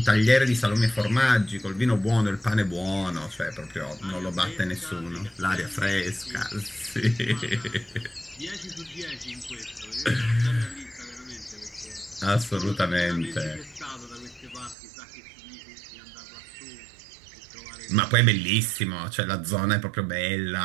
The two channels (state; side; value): drops out; left; at 14.8 s